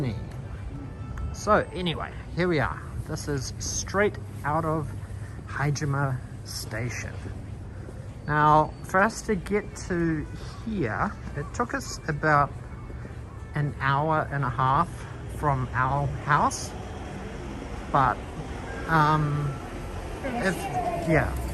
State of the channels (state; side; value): identical; both; correlation 1.00